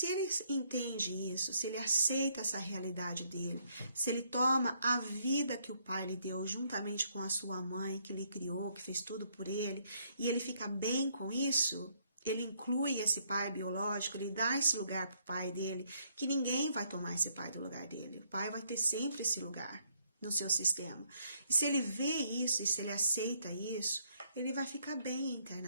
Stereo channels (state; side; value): inverted; both; correlation -0.70